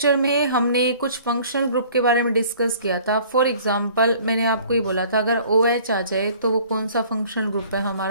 में हमने कुछ फंक्शनल ग्रुप के बारे में डिस्कस किया था। फॉर एग्जांपल मैंने आपको ये बोला था अगर OH आ जाए तो वो कौन सा फंक्शनल ग्रुप है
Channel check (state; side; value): inverted; both; correlation -0.52